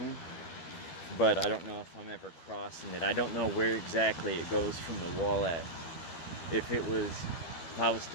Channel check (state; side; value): late; right; 13 ms